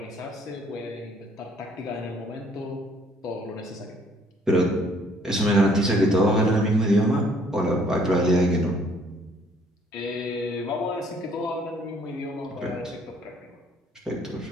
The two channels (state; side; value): normal; both; correlation 0.61